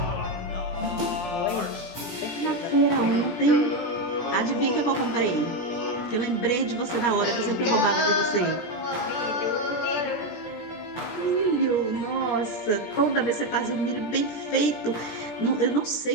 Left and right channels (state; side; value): late; right; 17 ms